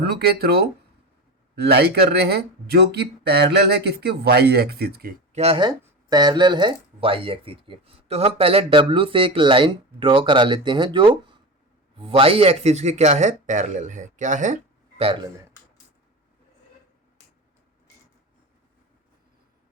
के थ्रू लाई कर रहे हैं, जो कि पैरेलल है किसके? वाई एक्सिस के। क्या है? पैरेलल है वाई एक्सिस के। तो हम पहले W से एक लाइन ड्रॉ करा लेते हैं जो वाई एक्सिस के क्या है? पैरेलल है। क्या है? पैरेलल है।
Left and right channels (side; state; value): both; normal; correlation 0.24